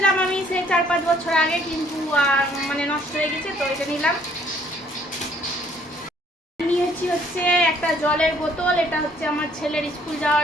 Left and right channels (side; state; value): both; normal; correlation 0.62